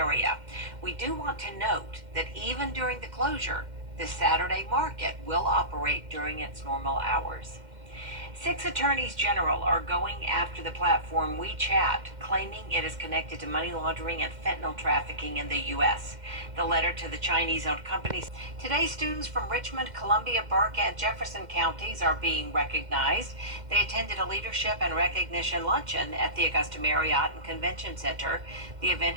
We do want to note that even during the closure, the Saturday market will operate during its normal hours. 6 attorneys general are going after the platform WeChat, claiming it is connected to money laundering and fentanyl trafficking in the U.S. The letter to the Chinese-owned companies. Today, students from Richmond, Columbia, Burke, and Jefferson counties are being recognized. They attended a leadership and recognition luncheon at the Augusta Marriott and Convention Center. The event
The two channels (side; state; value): left; late; 2.1 ms